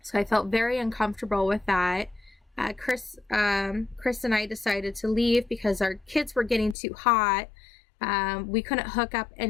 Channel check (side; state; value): right; drops out; at 6.8 s